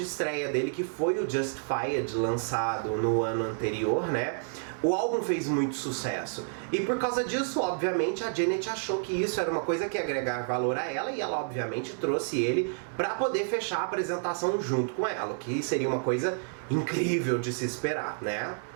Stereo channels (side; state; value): left; silent; digital silence